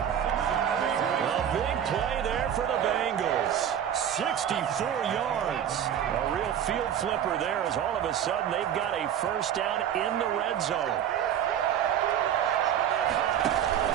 big play there for the Bengals. 64 yards. A real field flipper there, as all of a sudden they've got a first down in the red zone.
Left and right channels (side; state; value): left; quieter; 9.5 dB